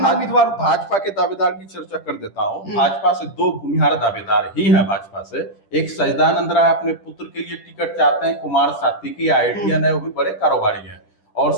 के दावेदार की चर्चा कर देता हूँ। भाजपा से 2 भूमिहार दावेदार ही हैं भाजपा से। एक सच्चिदानंद राय अपने पुत्र के लिए टिकट चाहते हैं, कुमार सात्विकी आईटीएन है, वो भी बड़े कारोबारी हैं और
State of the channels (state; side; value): late; right; 10 ms